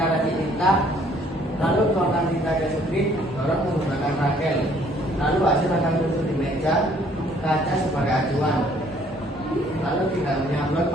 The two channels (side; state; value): both; normal; correlation 0.61